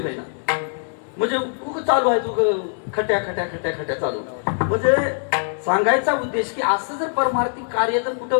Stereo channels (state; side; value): silent; right; digital silence